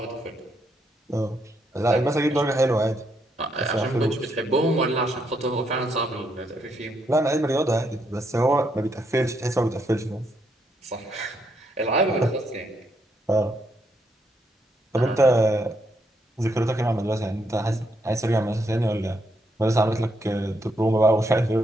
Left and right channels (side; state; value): both; normal; correlation 0.76